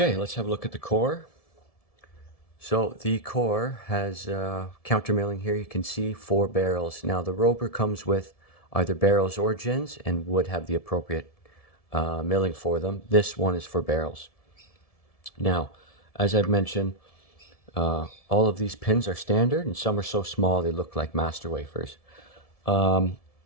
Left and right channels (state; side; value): late; right; 1.7 ms